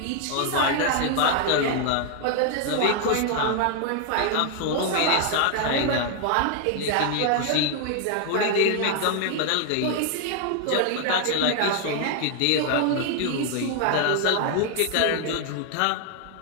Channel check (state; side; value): different; both; correlation 0.00